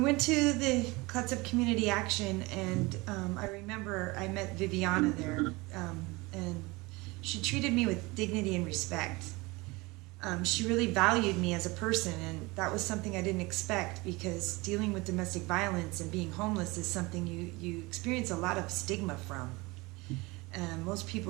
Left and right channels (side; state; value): left; quieter; 23.7 dB